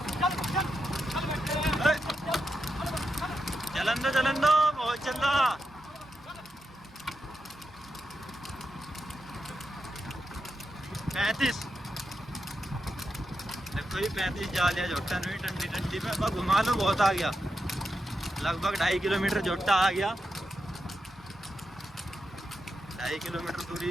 चलन दो बहुत चल रहा। पैंतीस देखो ये 35 जा लिया जोटा नहीं, ठंडी ठंडी में अब घुमा लो, बहुत आ गया, लगभग 2.5 किलोमीटर जोटा आ गया, 2.5 किलोमीटर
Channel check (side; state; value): both; normal; correlation 0.87